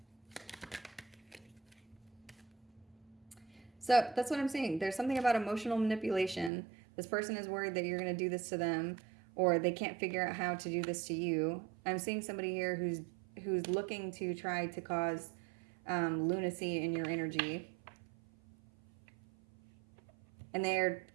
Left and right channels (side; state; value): left; drops out; at 6.5 s